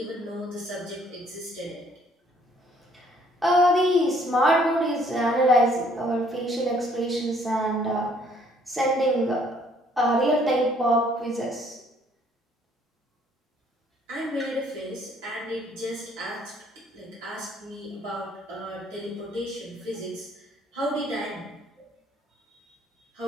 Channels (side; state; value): both; normal; correlation 0.63